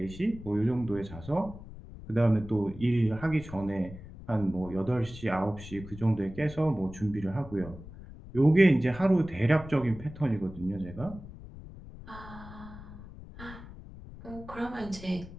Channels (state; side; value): noise; left; rumble, 15 dB below the sound